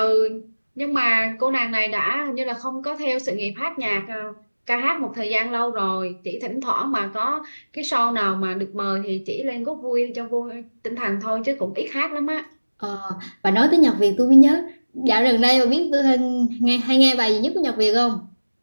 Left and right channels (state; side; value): inverted; both; correlation -1.00